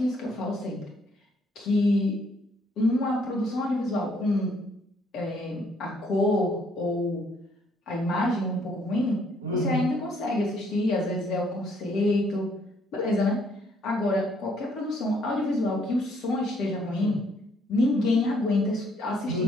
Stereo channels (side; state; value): both; normal; correlation 0.67